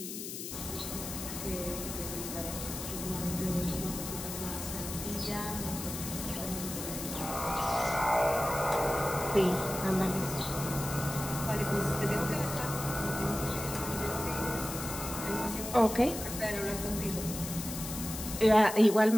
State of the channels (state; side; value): noise; left; hiss, 8 dB below the sound